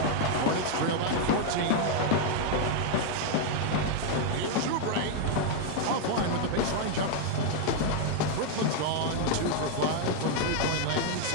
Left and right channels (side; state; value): both; different; correlation 0.00